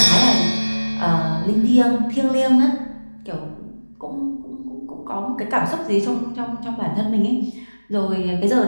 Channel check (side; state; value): both; inverted; correlation -1.00